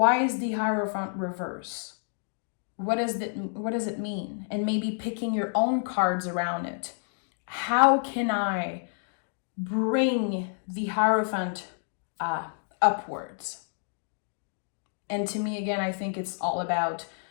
is the Hierophant reverse? What does it mean? And maybe picking your own cards around it. How can I bring the Hierophant upwards? And to me, again, I think it's all about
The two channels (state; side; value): silent; right; digital silence